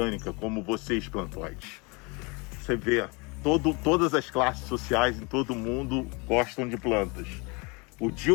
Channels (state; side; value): quieter; right; 29.2 dB